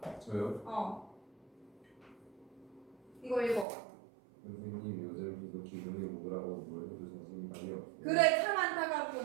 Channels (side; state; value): left; drops out; at 3.7 s